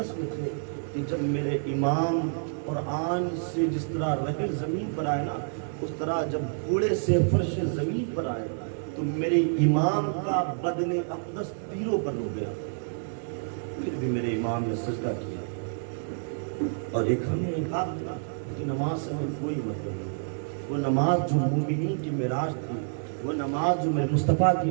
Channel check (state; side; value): silent; left; digital silence